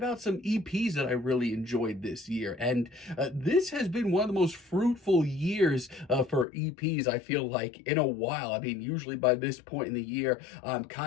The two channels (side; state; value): right; drops out; at 6.5 s